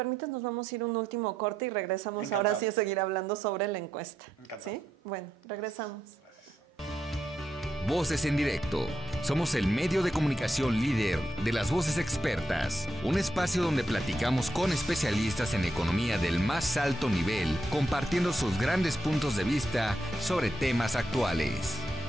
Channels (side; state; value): both; normal; correlation 0.82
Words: nos vamos a ir un último corte y regresamos. Encantado. Ahora sí a seguir hablando sobre la encuesta. Encantado. ¿Sí? Bueno, regresamos. Voces en Directo. Somos el medio de comunicación líder de las voces expertas. Un espacio donde platicamos con especialistas en economía del más alto nivel, compartiendo sus grandes puntos de vista sobre temas actuales.